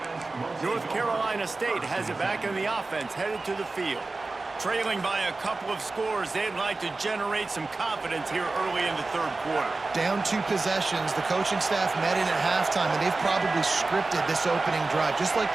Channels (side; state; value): left; quieter; 3.5 dB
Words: North Carolina State has it back in the offense, headed to the field. Trailing by a couple of scores, they'd like to generate some confidence here early in the third quarter. Down 2 possessions, the coaching staff met in at halftime, and they've probably scripted this opening drive. Just like